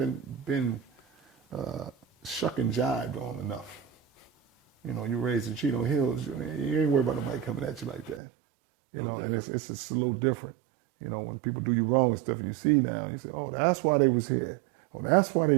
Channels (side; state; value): left; drops out; at 8.2 s